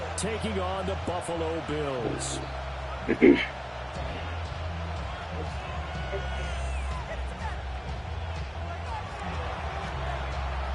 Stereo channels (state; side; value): identical; both; correlation 1.00